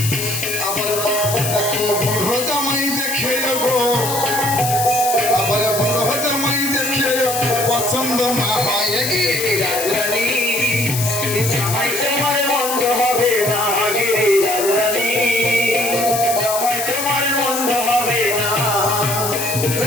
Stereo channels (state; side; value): noise; left; hiss, 4 dB below the sound